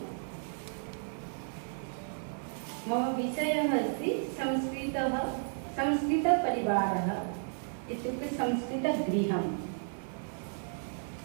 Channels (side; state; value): left; silent; digital silence